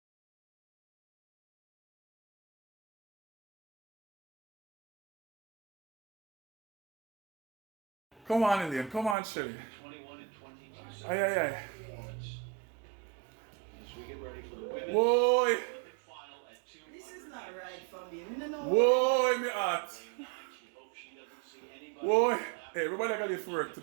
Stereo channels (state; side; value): drops out; left; at 9.2 s